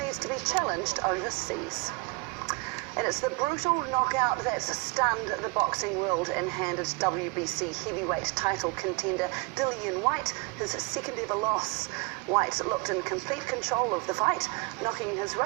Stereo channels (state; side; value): quieter; left; 26.6 dB